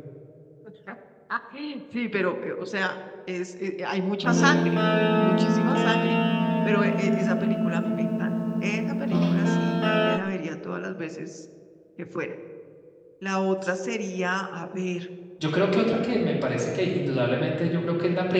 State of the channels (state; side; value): identical; both; correlation 1.00